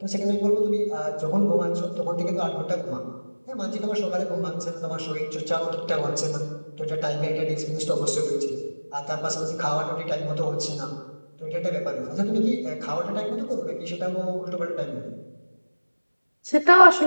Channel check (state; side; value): inverted; both; correlation -1.00